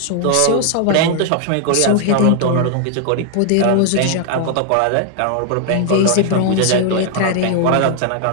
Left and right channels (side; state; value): both; different; correlation 0.00